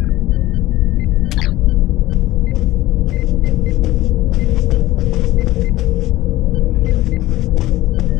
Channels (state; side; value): quieter; right; 16.9 dB